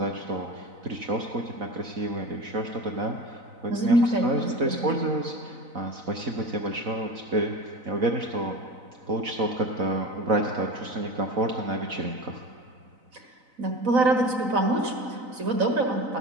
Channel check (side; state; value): left; late; 4.0 ms